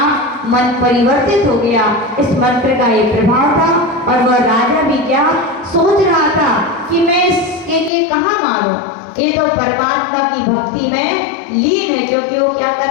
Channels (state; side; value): drops out; right; at 7.9 s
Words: मन परिवर्तित हो गया। इस मंत्र का ये प्रभाव था और वह राजा भी क्या सोच रहा था कि मैं इसके लिए कहाँ मारूं, ये तो परमात्मा की भक्ति में लीन है, क्योंकि वो क्या